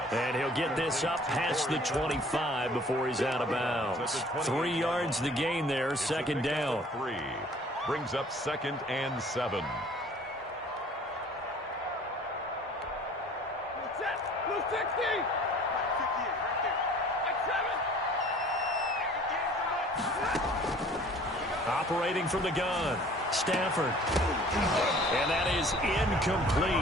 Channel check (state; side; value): normal; both; correlation 0.51